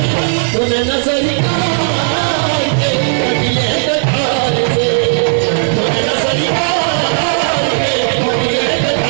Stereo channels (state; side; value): silent; left; digital silence